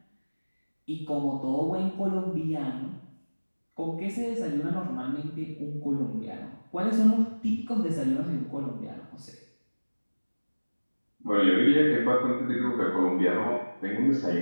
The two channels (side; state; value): both; inverted; correlation -1.00